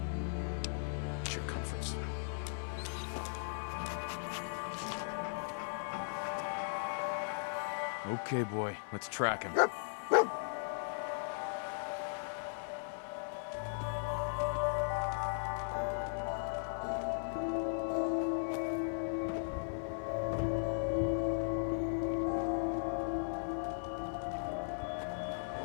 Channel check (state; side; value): silent; right; 53 dB below the other